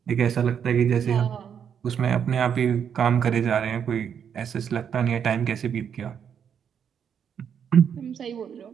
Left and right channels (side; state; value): left; quieter; 7.9 dB